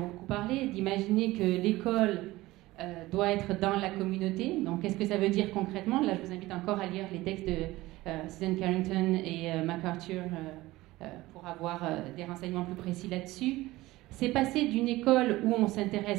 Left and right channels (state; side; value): quieter; left; 18.5 dB